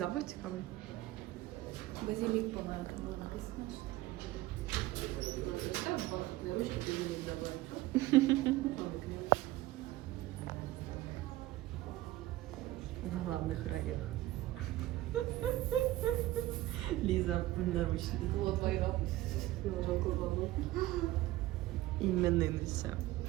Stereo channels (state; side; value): quieter; left; 16.6 dB